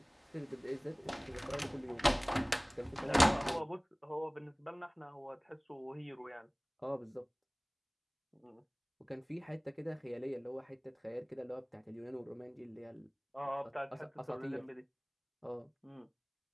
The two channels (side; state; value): both; identical; correlation 1.00